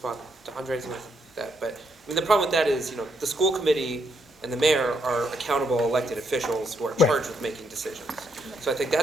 to Andres with that, but I mean, the problem with that is, the school committee and the mayor are accountable elected officials who are charged with making decisions. So I think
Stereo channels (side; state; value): both; normal; correlation 0.76